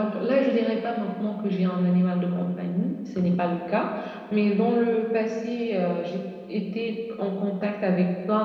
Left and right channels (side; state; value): both; identical; correlation 1.00